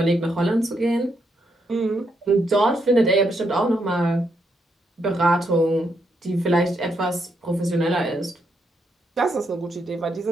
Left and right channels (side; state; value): both; normal; correlation 0.78